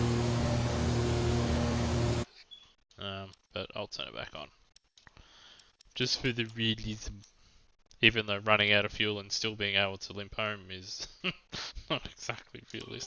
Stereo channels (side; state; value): both; identical; correlation 1.00